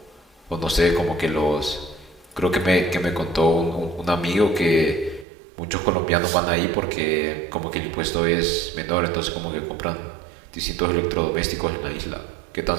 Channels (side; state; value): left; drops out; at 5.2 s